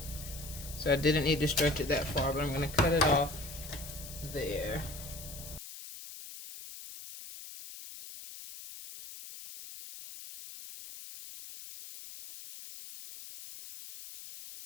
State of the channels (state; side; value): noise; left; hiss, 13 dB below the sound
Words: So I didn't need to stretch it that far, but I'm going to cut it off there.